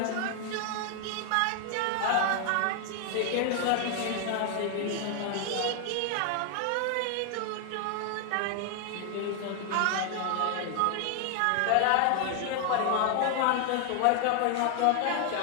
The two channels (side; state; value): both; different; correlation 0.00